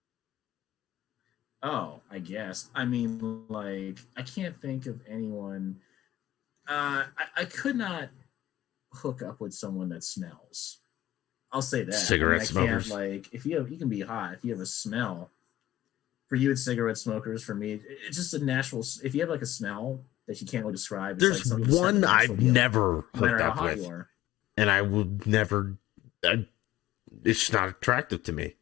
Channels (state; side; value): quieter; right; 14.6 dB